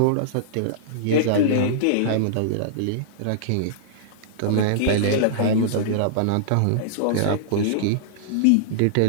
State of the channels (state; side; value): different; both; correlation -0.02